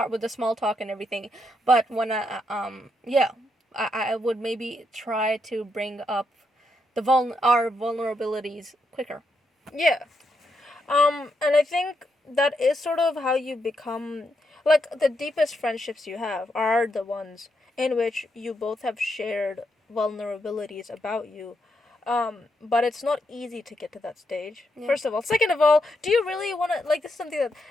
with the small talk and everything. But when I would maybe try to bring up our vulnerabilities quicker. Yeah. And I think that is sort of how you become like the deepest friendships you have are the ones in which you both have shared vulnerabilities about you. But it's not easy to get to that stage. Yeah. First of all. Second of all, do you really want to, like, this is something that,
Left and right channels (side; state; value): both; normal; correlation 0.80